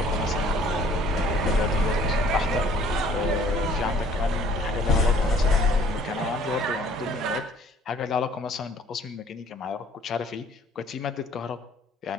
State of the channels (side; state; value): both; normal; correlation 0.56